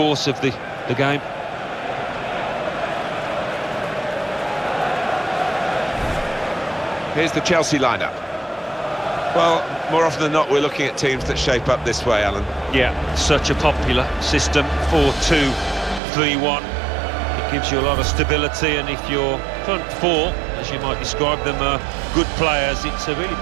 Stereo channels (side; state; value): left; drops out; at 16.0 s